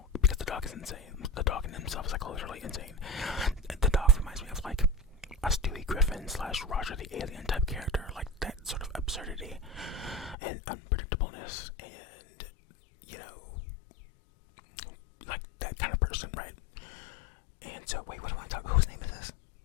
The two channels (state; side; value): drops out; right; at 10.4 s